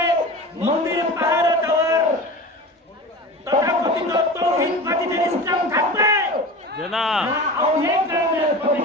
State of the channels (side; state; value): both; normal; correlation 0.33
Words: মন্দির পাহারা দেওয়ার তথাকথিত তৌহিদবাদীদের ইসলাম থাকবে না, আউলিয়া কেরামের